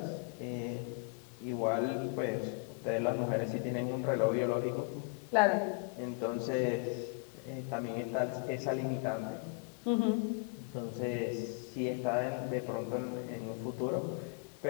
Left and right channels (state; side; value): quieter; right; 32.9 dB